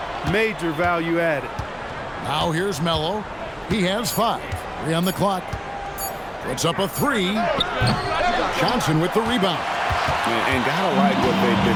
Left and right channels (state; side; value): identical; both; correlation 1.00